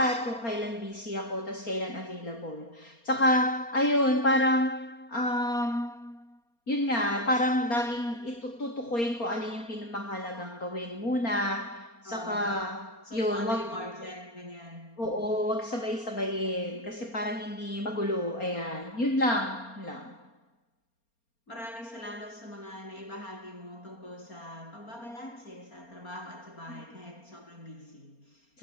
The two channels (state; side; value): late; right; 4.3 ms